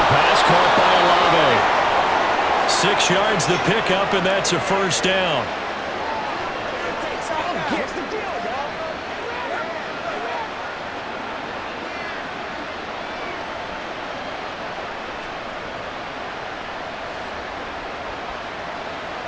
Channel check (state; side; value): identical; both; correlation 1.00